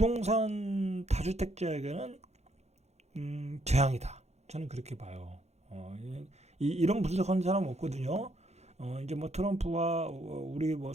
다주택자에게는 재앙이다. 저는 그렇게 봐요. 이런 분석하는 사람 없거든요. 이제 뭐 트럼프와 우리 뭐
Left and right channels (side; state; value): left; late; 0.32 ms